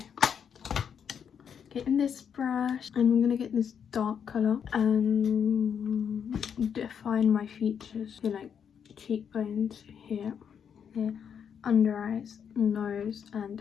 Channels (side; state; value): right; quieter; 7.6 dB